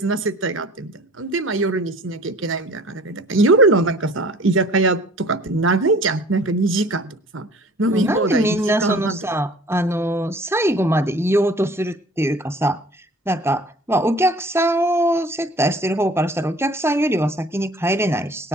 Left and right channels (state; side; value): normal; both; correlation 0.48